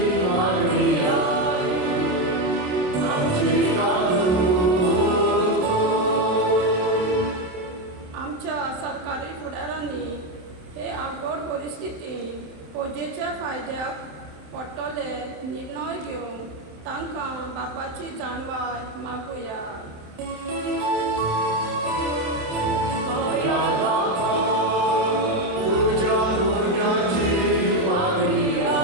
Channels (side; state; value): left; late; 27 ms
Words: पोजेच्या फायद्याक पडटले निर्णय घेवंक तांकां बापाची जाणवाय मागुया